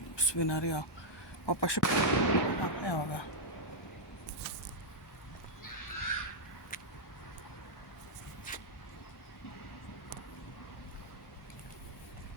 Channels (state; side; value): normal; both; correlation -0.05